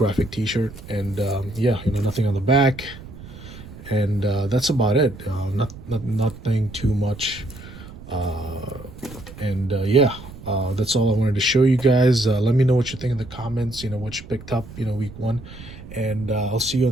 t-shirt. And yeah, nothing on the back, and that's about it. Nothing too much. And yeah, that's all I wanted to show you guys. Let me know what you think in the comments, what you picked up week 1, and I'll see you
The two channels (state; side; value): noise; right; rumble, 15 dB below the sound